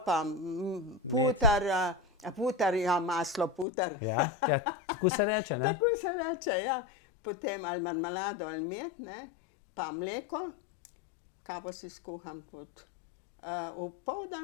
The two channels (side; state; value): right; drops out; at 3.7 s